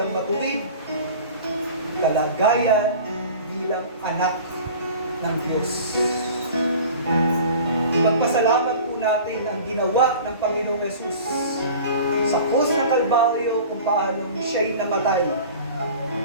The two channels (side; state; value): both; inverted; correlation -0.41